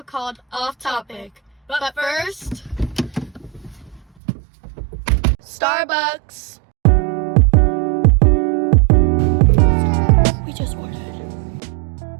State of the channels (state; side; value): drops out; left; at 4.0 s